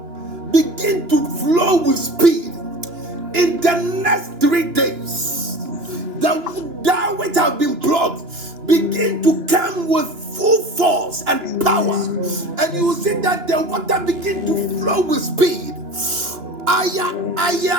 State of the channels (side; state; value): left; late; 2.9 ms